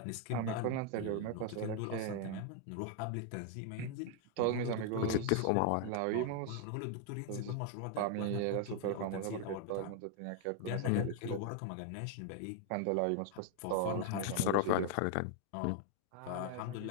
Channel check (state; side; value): different; both; correlation 0.00